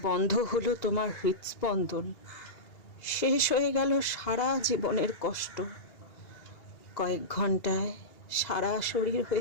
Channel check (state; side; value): late; right; 2.8 ms